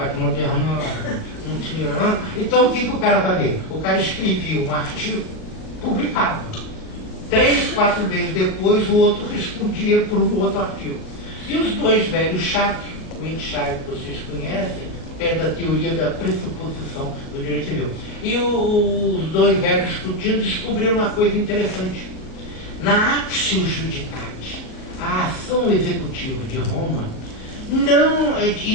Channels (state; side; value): late; right; 39 ms